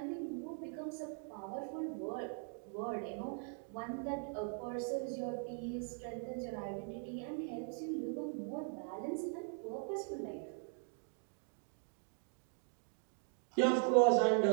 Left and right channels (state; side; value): silent; left; 51 dB below the other